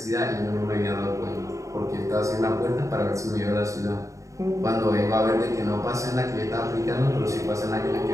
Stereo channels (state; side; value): late; left; 0.15 ms